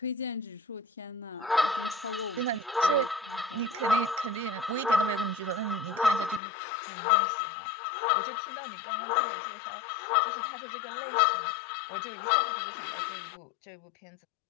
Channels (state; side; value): drops out; right; at 6.4 s